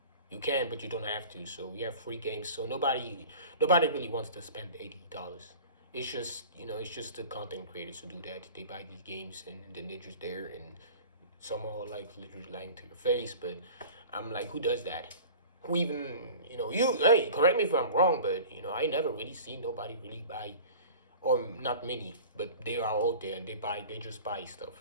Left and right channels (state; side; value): inverted; both; correlation -0.40